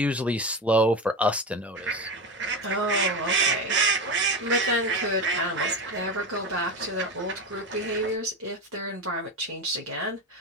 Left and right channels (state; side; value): normal; both; correlation 0.20